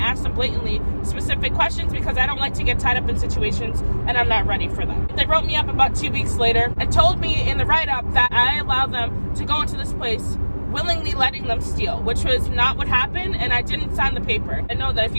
them blatantly specific questions, because I don't like to get tied up in situations and I'm not ready for them. They wrote me up about 2 weeks later and told me in the write-up that I allowed them to go into this place willingly letting them steal, which was not what happened, and I didn't sign the paper. I know that if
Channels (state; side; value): inverted; both; correlation -1.00